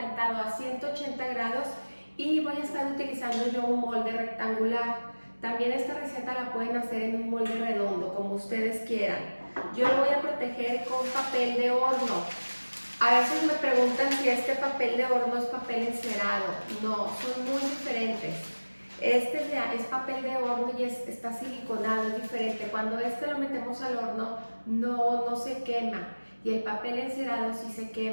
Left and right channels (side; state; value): both; inverted; correlation -1.00